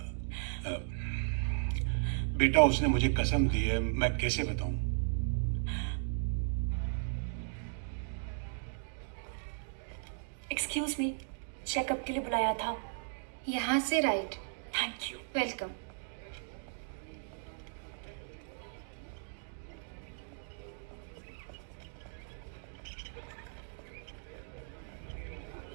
बेटा उसने मुझे कसम दी है, मैं कैसे बताऊं? एक्सक्यूज मी, चेकअप के लिए बुलाया था। यहाँ से right. Thank you. Welcome.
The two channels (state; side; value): silent; left; digital silence